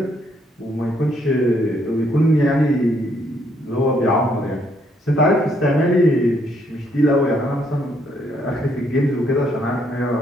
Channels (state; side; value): normal; both; correlation 0.71